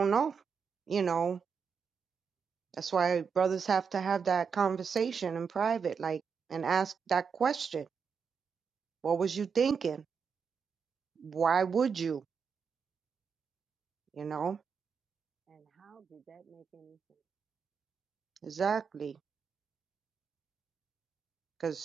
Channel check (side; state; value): left; quieter; 6.1 dB